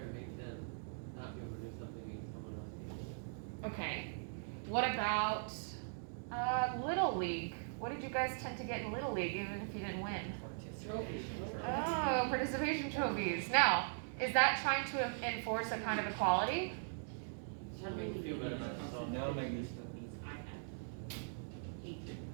to make them not be able to do something and someone else be able to. Okay. What about Little League? What did you guys tend to get in Little League, even if you didn't win? Trophies. Oh, participation trophies. Now, is that trying to enforce a kind of equality? Trying to make you feel better about yourself. No, maybe.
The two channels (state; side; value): silent; left; digital silence